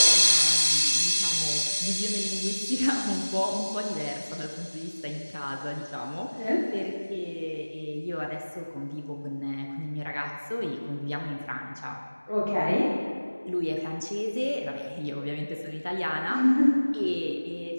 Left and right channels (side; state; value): both; inverted; correlation -1.00